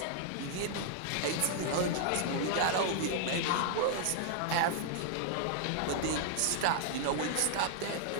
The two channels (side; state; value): both; different; correlation 0.00